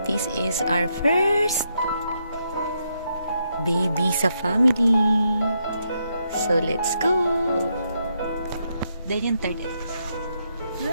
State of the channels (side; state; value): both; inverted; correlation -0.79